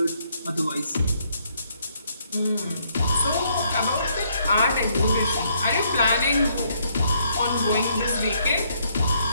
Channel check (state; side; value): inverted; both; correlation -0.71